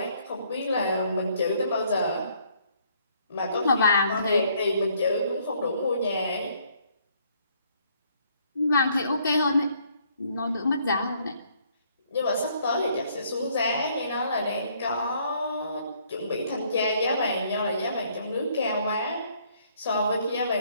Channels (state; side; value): inverted; both; correlation -0.66